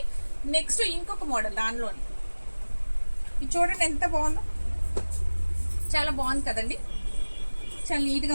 నెక్స్ట్ ఇంకొక మోడల్ దానిలోని, ఇది చూడండి ఎంత బాగుందో, చాలా బాగుంది కదండి. చాలా నీట్గా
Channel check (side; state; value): both; inverted; correlation -1.00